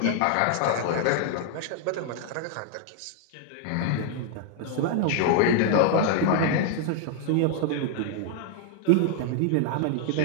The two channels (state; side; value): different; both; correlation 0.00